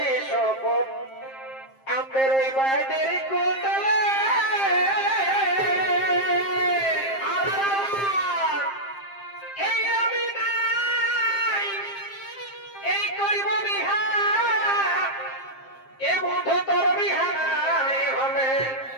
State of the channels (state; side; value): late; right; 7.5 ms